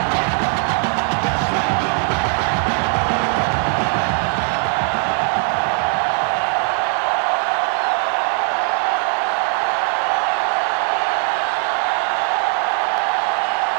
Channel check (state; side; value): quieter; left; 39.9 dB